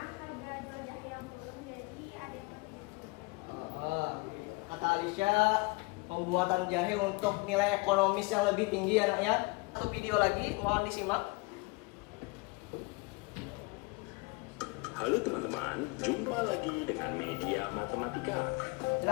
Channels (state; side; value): quieter; right; 27.0 dB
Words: harga jual jahe yang turun, jadi ada yang lebih Kata Alicia, pembuatan jahe untuk nilai ekonomis yang lebih tinggi anaknya. Satu video lagi, mohon disimak. Halo teman-teman, jumpa lagi dengan media matematika.